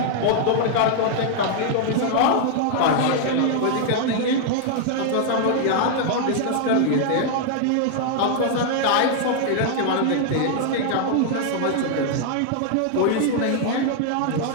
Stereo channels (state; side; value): different; both; correlation 0.00